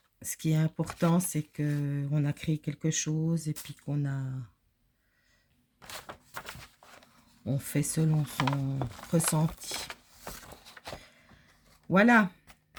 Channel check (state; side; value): identical; both; correlation 1.00